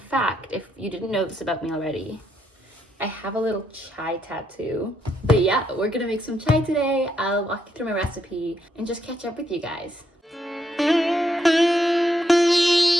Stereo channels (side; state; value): both; normal; correlation 0.77